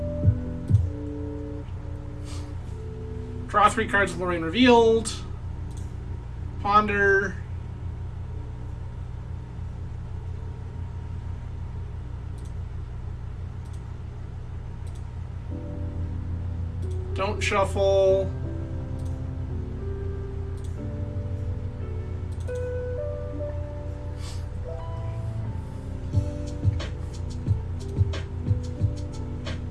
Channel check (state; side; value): identical; both; correlation 1.00